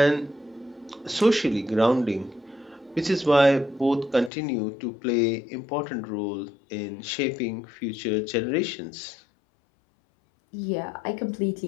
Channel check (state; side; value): drops out; right; at 4.3 s